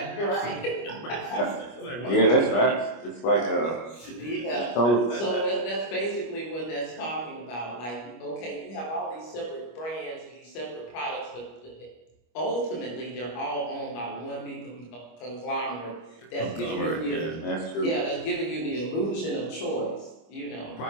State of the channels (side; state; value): right; late; 25 ms